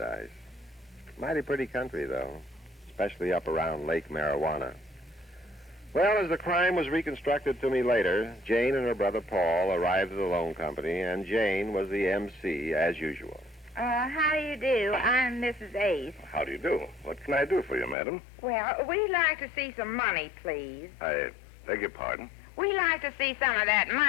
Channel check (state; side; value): drops out; right; at 17.9 s